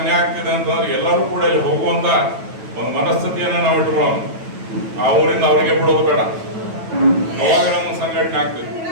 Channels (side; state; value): left; late; 9.1 ms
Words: ಆಗ್ತಿದೆ ಅಂತಂದ್ರೆ ಎಲ್ಲರೂ ಕೂಡ ಇಲ್ಲಿ ಹೋಗುವಂತ ಒಂದು ಮನಸ್ಥಿತಿಯನ್ನ ನಾವು ಇಟ್ಕೊಳ್ಳೋಣ. ಆ ಊರಿಂದ ಅವರಿಗೆ ಬಿಡೋದು ಬೇಡ. ಅವಾಗ ನಮ್ಮ ಸಂಘಟನೆ ಆಗ್ತದೆ.